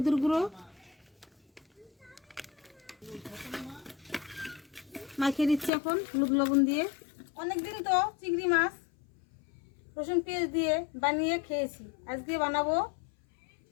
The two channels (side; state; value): right; drops out; at 5.7 s